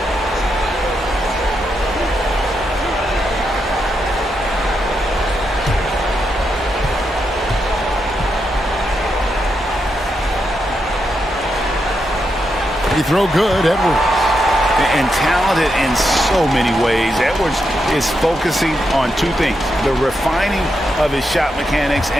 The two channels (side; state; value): both; normal; correlation 0.83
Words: Throw good, Edwards. And talented in so many ways. Edwards is focusing on 2 things: the refining of his shot mechanics